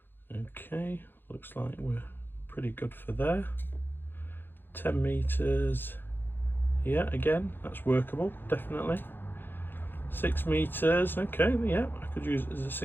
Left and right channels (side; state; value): right; late; 0.099 ms